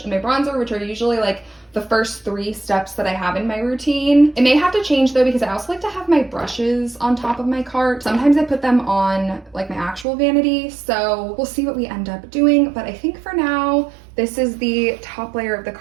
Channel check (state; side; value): drops out; left; at 10.1 s